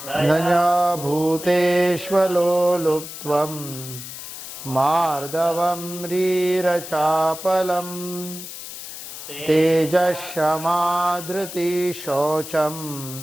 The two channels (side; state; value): left; noise; hiss, 11 dB below the sound